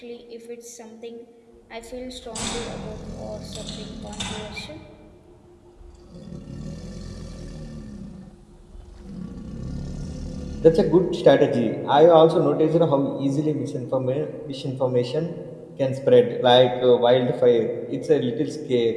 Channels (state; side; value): identical; both; correlation 1.00